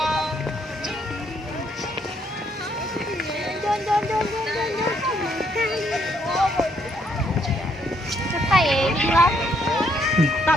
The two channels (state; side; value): normal; both; correlation 0.71